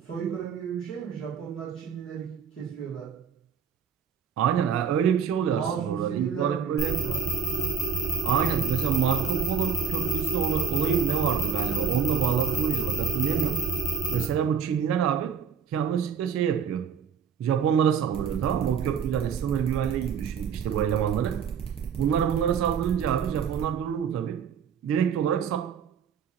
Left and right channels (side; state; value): left; quieter; 6.9 dB